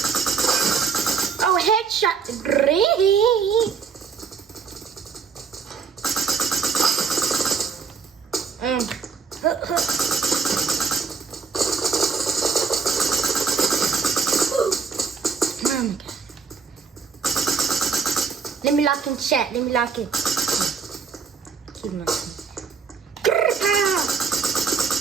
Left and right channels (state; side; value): quieter; left; 5.5 dB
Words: Oh, headshot. Great. Let me lock in chat. Let me lock in. Keep locking.